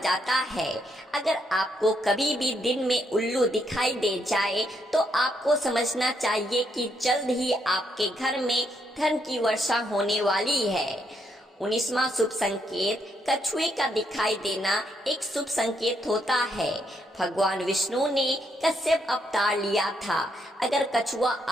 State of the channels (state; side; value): normal; both; correlation 0.76